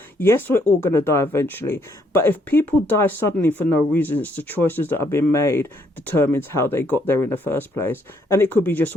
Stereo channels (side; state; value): both; normal; correlation 0.70